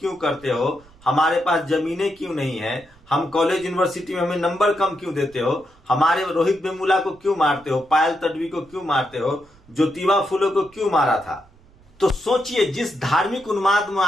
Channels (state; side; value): noise; right; rumble, 28 dB below the sound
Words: करते हो, हमारे पास जमीनें क्यों नहीं है, हम कॉलेज यूनिवर्सिटी में हमें नंबर कम क्यों देते हो, हमारे रोहित वेमुला को क्यों मारते हो, पायल तडवी को क्यों मारते हो, ज्योतिबा फुले को क्यों मारा था। तो सोचिए, जिस धार्मिक उन्माद में